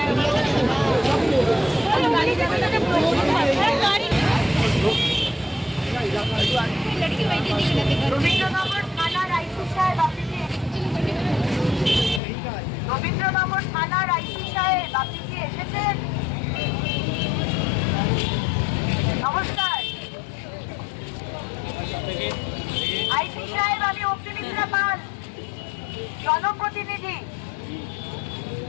রবীন্দ্রনগর থানার আইসি সাহেব আপনি কি এসেছেন? নমস্কার আইসি সাহেব, আমি অগ্নিমিত্রা পাল, জনপ্রতিনিধি।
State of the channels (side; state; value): right; drops out; at 12.2 s